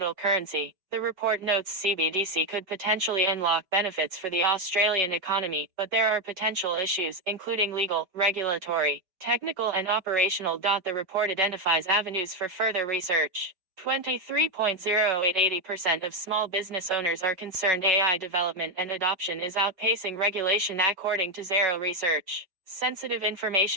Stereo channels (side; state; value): left; late; 5.3 ms